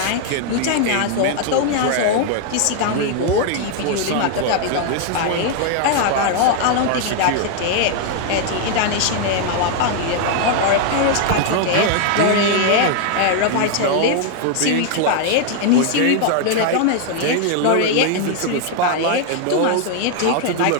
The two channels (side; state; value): both; different; correlation 0.00